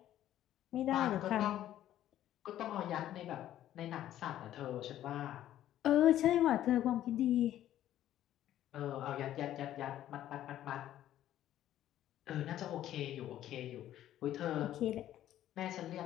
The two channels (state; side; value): quieter; right; 12.4 dB